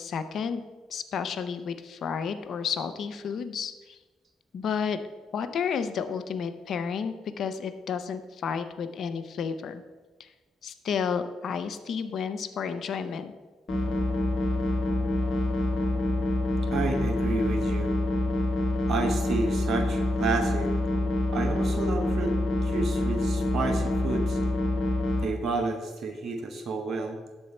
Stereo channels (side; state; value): both; normal; correlation 0.82